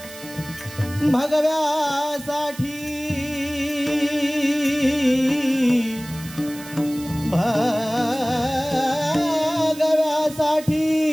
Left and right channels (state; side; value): noise; right; hiss, 16 dB below the sound